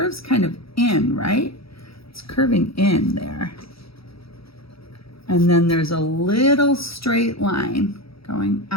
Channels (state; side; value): late; right; 0.76 ms